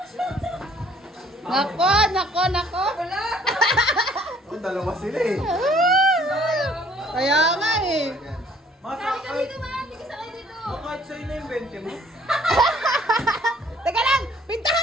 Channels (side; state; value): both; normal; correlation 0.59